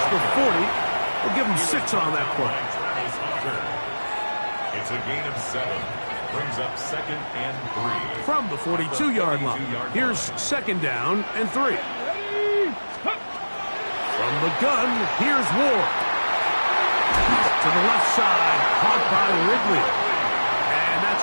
the 40. We'll give him 6 on that play. It's a gain of 7. Brings up 2nd and 3. From the 42-yard line, here's 2nd down and 3. From the gun, here's Ward. To the left side, caught by Ridley. And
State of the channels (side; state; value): both; inverted; correlation -1.00